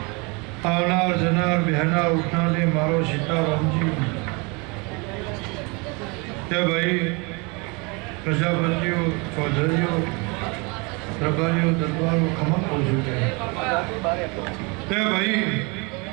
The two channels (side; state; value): left; quieter; 29.5 dB